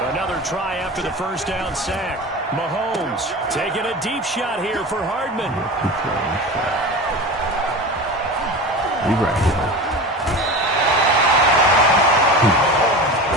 Another try after the first down sack. Mahomes taking a deep shot here for Hardman.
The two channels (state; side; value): normal; both; correlation 0.30